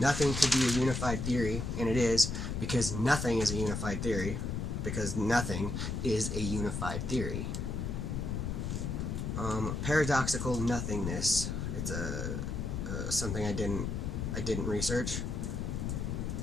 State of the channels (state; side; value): noise; left; rumble, 2 dB below the sound